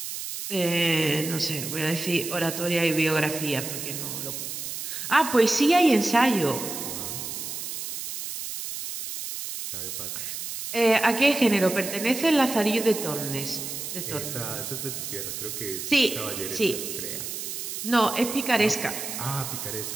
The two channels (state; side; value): noise; right; hiss, 6 dB below the sound